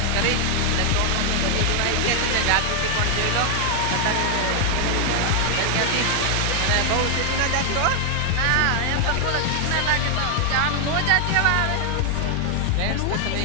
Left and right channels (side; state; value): both; different; correlation 0.00